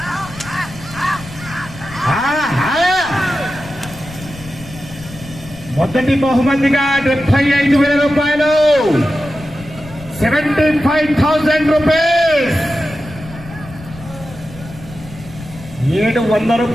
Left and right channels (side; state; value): left; noise; rumble, 16 dB below the sound